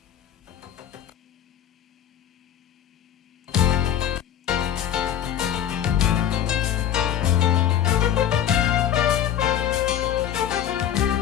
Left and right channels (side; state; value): right; quieter; 10.4 dB